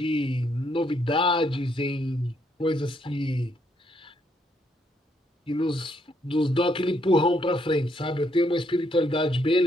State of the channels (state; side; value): normal; both; correlation 0.73